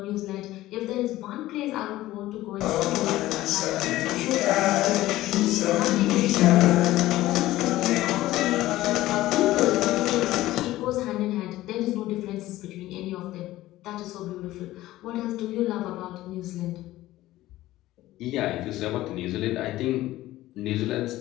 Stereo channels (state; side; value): quieter; right; 16.1 dB